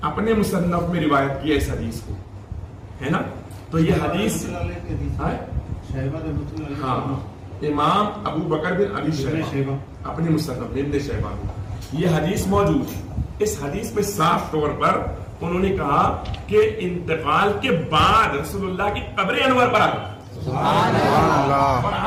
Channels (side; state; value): both; identical; correlation 1.00